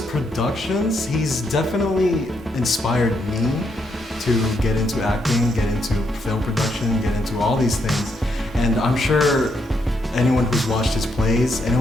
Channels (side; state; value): both; normal; correlation 0.78